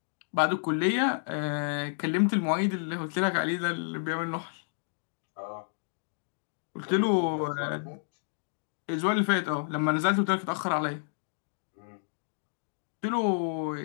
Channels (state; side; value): silent; right; digital silence